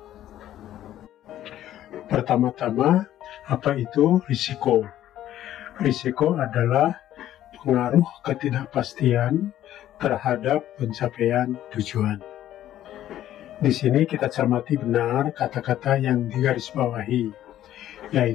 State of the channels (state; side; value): quieter; right; 12.5 dB